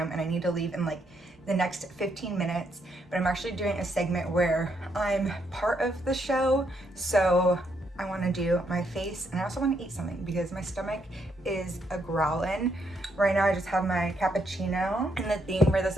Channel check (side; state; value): both; normal; correlation 0.75